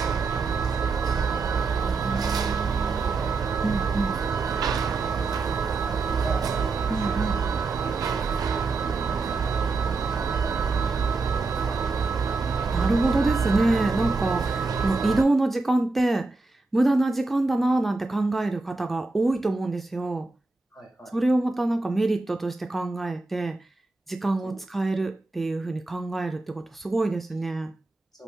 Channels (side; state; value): left; quieter; 3.5 dB